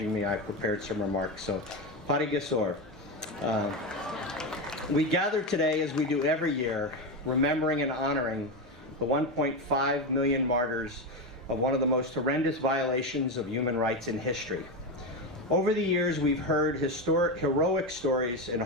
me. I prepared some remarks. So, Pari Gesor. We gather today, as we do every year, remembering and honoring the 1.5 million martyrs of one of the most horrendous violations of human rights in history. Over the years, we've heard heroic stories and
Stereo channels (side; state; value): both; normal; correlation 0.14